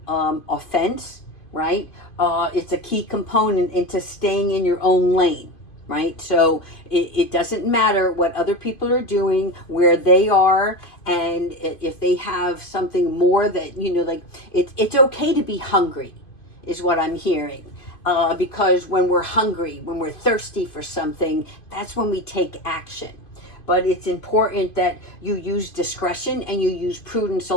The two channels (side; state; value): right; late; 2.5 ms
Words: offense, right? It's a key component into staying in your own lane. Right? So it doesn't matter what other people are doing, where they are, and if they have something more that, it's okay to be hungry, is what I'm hearing. Because when we're hungry, when we're thirsty for something, that's when we take action. But it's important that you use discretion and you use prudence